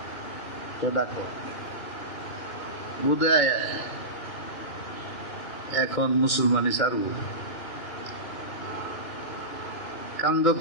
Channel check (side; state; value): right; late; 2.4 ms